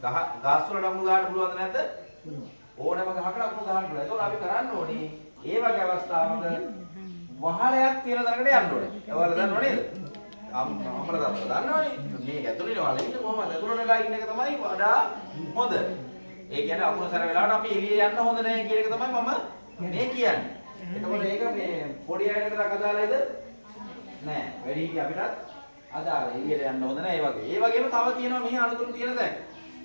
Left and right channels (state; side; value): inverted; both; correlation -1.00